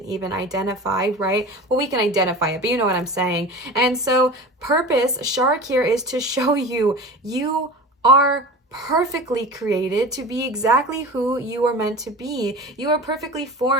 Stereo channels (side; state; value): both; normal; correlation 0.34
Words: even identify, right? Well, we can identify it, but you know what I'm saying. And so purpose, Shark here, is to show you are perfectly created to be exactly who you are meant to be. You are perfectly